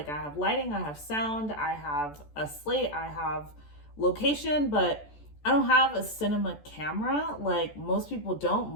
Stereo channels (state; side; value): late; right; 14 ms